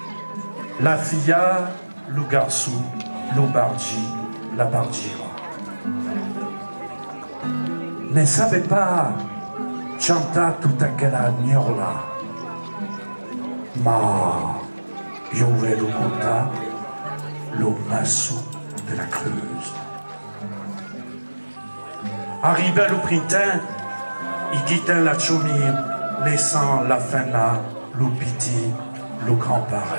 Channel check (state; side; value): inverted; both; correlation -1.00